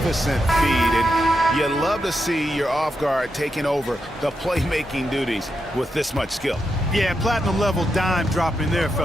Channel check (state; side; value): normal; both; correlation 0.85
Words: feed, and you love to see your off guard taking over the playmaking duties with this much skill. Yeah, platinum level dime dropping there,